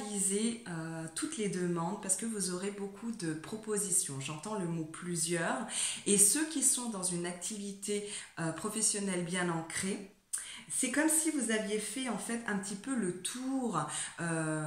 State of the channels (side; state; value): both; identical; correlation 1.00